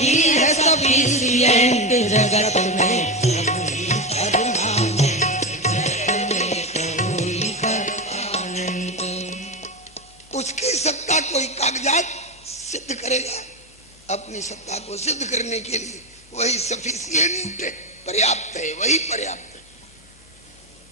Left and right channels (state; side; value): normal; both; correlation 0.15